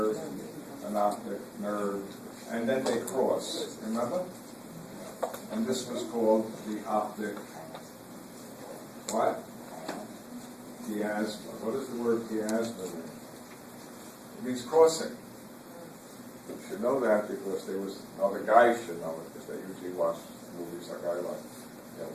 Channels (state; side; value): identical; both; correlation 1.00